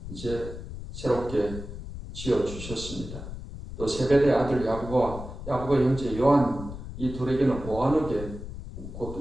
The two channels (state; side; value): noise; left; rumble, 10 dB below the sound